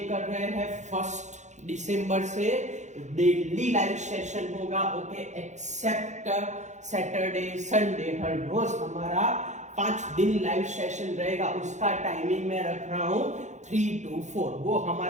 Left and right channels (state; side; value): late; left; 0.34 ms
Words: कर रहे हैं। 1 दिसंबर से डेली लाइव सेशन होगा। ओके, एक्सेप्ट सैटरडे संडे, हर रोज हमारा 5 दिन लाइव सेशन रहेगा। उसका टाइमिंग मैं रख रहा हूं 3 to 4। वो